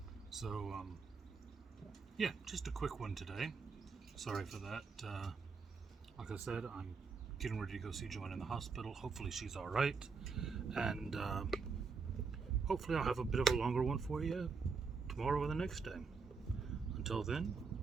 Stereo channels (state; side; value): quieter; left; 5.0 dB